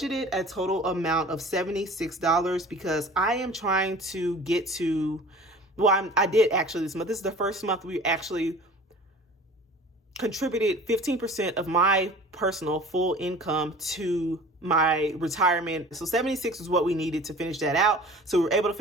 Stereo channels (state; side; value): normal; both; correlation 0.44